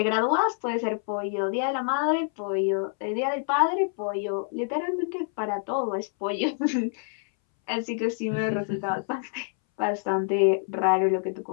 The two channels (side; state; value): right; silent; 60 dB below the other